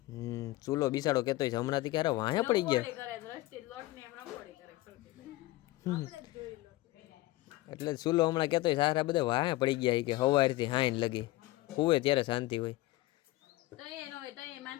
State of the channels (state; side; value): quieter; right; 18.4 dB